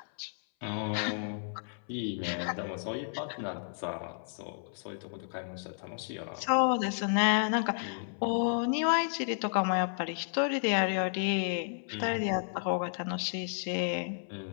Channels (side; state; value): right; silent; 56 dB below the other